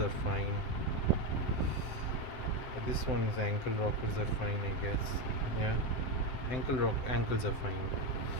fine. This one's ankle rockers are fine, I guess. Yeah, ankles are fine.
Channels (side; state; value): right; late; 7.8 ms